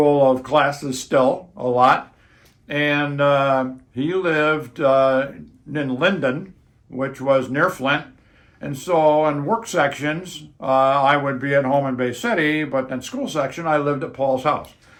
of classes still, a lot. And he lived in Linden, which was near Flint. And so in work sections, I would be at home in Bay City, but in school section, I lived at Paul's house.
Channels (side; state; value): both; identical; correlation 1.00